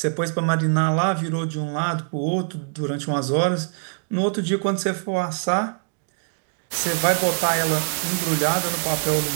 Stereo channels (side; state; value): left; silent; digital silence